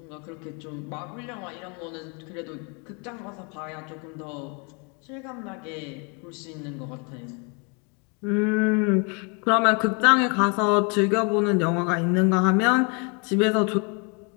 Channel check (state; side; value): quieter; right; 34.3 dB